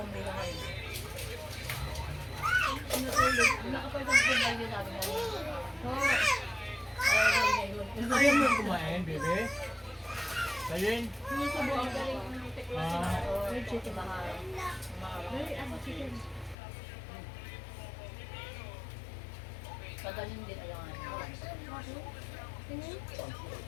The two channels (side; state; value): right; drops out; at 16.6 s